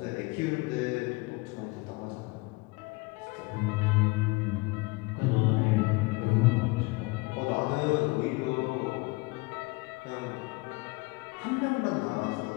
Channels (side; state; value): right; quieter; 25.3 dB